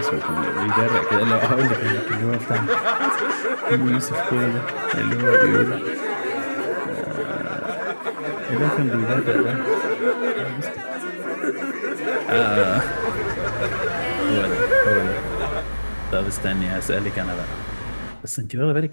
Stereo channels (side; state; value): both; inverted; correlation -1.00